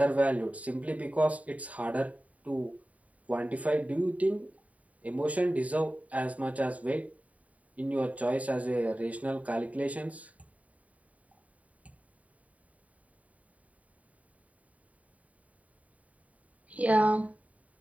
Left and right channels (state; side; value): late; left; 0.069 ms